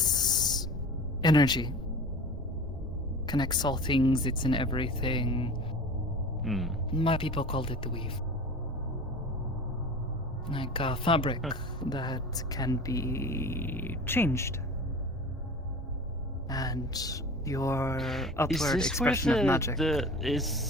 energy connects all things, it's in everything. My people called it the weave. Like a fabric that can be changed. And your upward expression of magic.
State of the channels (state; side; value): normal; both; correlation 0.37